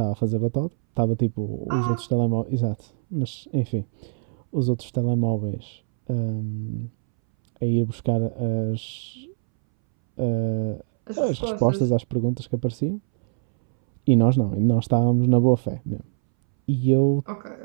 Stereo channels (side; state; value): left; silent; 63 dB below the other